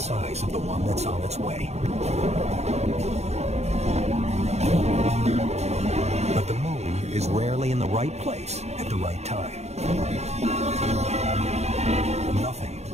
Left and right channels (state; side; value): late; left; 0.32 ms